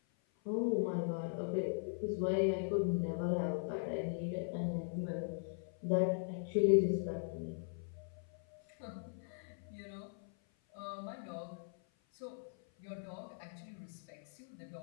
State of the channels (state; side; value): silent; right; 51 dB below the other